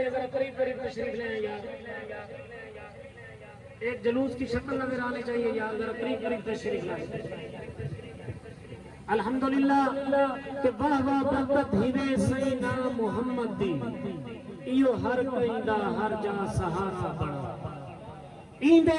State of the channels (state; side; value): identical; both; correlation 1.00